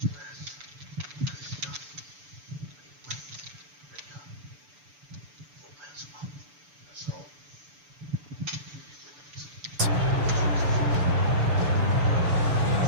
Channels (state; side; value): late; left; 6.9 ms